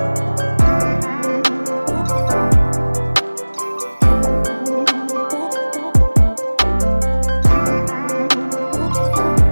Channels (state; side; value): inverted; both; correlation -1.00